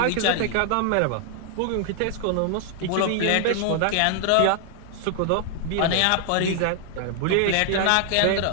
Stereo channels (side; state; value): both; different; correlation 0.00